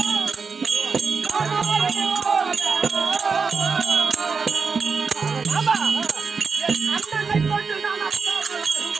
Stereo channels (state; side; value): quieter; left; 5.1 dB